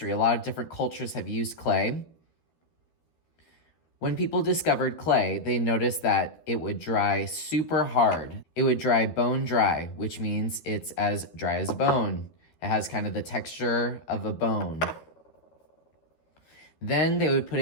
A lot of different cultures have used clay. When people discovered clay, they noticed that it would dry super hard. It would dry bone dry, which means it's as dry as a bone. It has kind of the texture of a bone. Then they would put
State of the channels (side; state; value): right; late; 13 ms